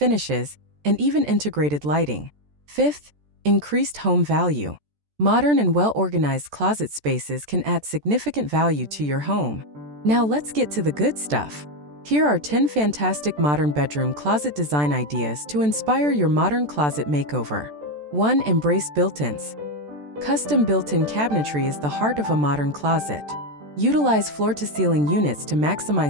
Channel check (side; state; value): left; late; 14 ms